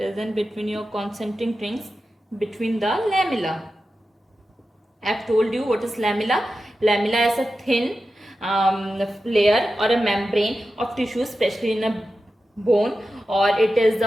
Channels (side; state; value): both; normal; correlation 0.92